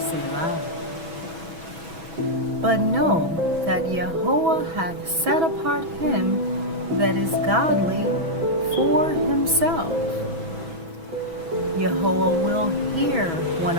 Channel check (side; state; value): left; late; 6.1 ms